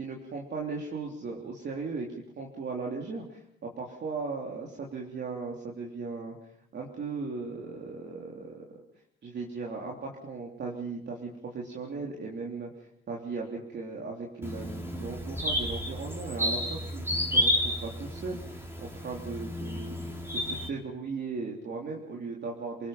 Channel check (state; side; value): normal; both; correlation 0.10